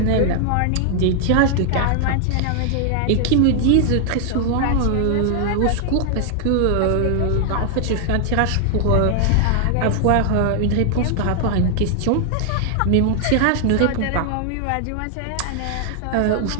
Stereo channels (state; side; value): different; both; correlation 0.00